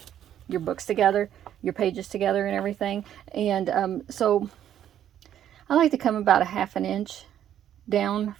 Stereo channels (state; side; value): quieter; left; 10.6 dB